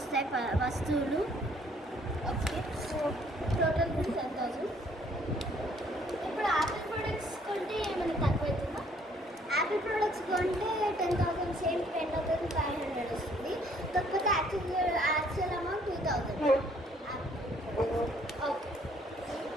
వస్తువులు. Okay, so total bill 10,000. ఇప్పుడు యాపిల్ ప్రోడక్ట్స్ కొంటే ఏమైనా తక్కువ అవుతుందా? యాపిల్ ప్రోడక్ట్స్ కొంటే 10,000 సేమ్ 10,500 వస్తుంది. కాకపోతే యాక్చువల్ అమౌంట్ 2,000. ఓకే,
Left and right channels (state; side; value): normal; both; correlation 0.62